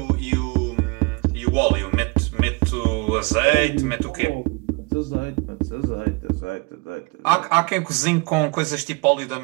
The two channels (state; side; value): quieter; left; 29.0 dB